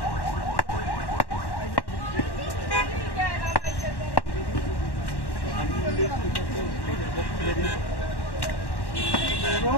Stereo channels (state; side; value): late; right; 1.1 ms